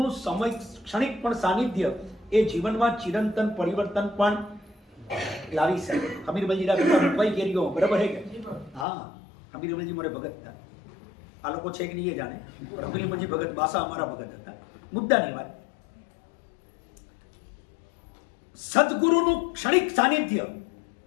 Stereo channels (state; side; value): drops out; right; at 8.8 s